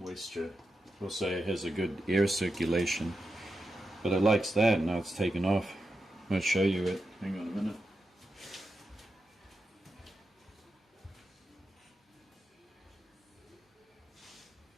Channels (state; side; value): normal; both; correlation 0.88